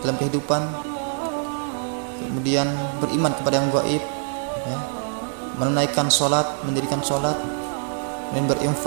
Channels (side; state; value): left; silent; digital silence